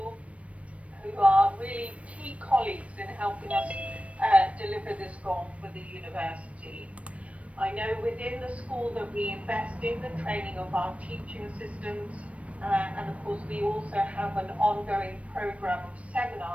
who are really key colleagues in helping us deliver this goal for the university. I know within the school that we invest in the training of our teaching assistants, and of course we also have an ongoing program of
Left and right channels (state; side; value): late; left; 0.064 ms